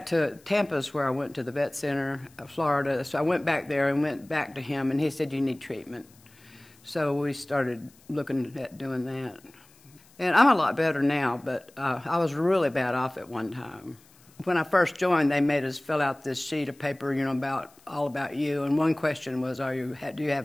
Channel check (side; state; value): left; noise; hiss, 28 dB below the sound